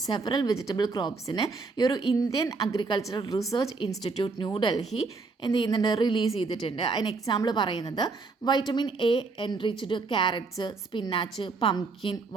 several vegetable ക്രോപ്സിന് ഈ ഒരു Indian Agricultural Research Institute New Delhi എന്ത് ചെയ്യുന്നുണ്ട്, release ചെയ്തിട്ടുണ്ട്. അതിന് example പറയുന്നത് vitamin A enriched carrots, spinach, pumpkin,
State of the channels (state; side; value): quieter; left; 4.1 dB